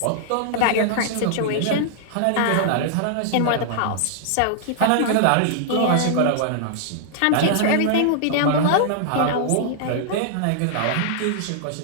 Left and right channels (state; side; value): different; both; correlation -0.01